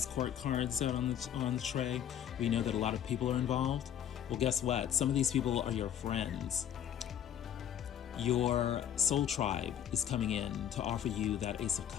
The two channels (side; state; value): right; quieter; 9.7 dB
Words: court cards out on the tray, we know that a lot of people are involved. Well, guess what? Some of these people are your friends. Your soul tribe is coming in to offer you that Ace of